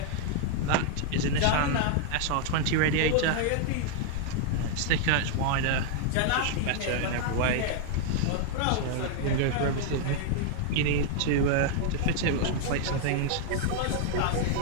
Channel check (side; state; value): both; different; correlation 0.00